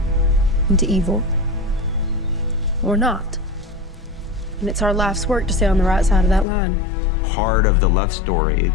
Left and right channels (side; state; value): right; drops out; at 6.5 s